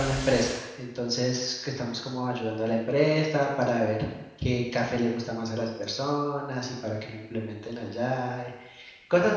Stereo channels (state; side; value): identical; both; correlation 1.00